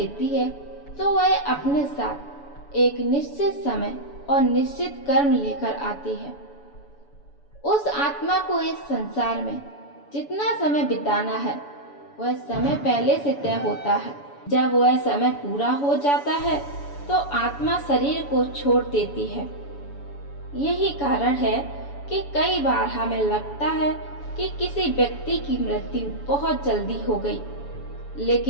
है तो वह अपने साथ एक निश्चित समय और निश्चित कर्म लेकर आती है। उस आत्मा को इस संसार में जितना समय बिताना है वह समय पहले से तय होता है। जब वह समय पूरा हो जाता है तो आत्मा शरीर को छोड़ देती है। यही कारण है कि कई बार हमें लगता है कि किसी व्यक्ति की मृत्यु बहुत जल्दी हो गई,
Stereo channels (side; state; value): right; late; 7.0 ms